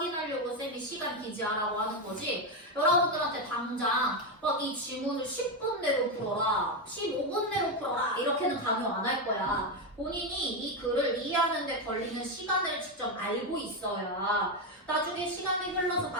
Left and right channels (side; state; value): both; normal; correlation 0.09